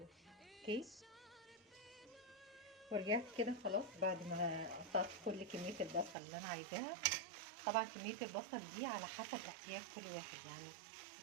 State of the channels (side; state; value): left; drops out; at 6.2 s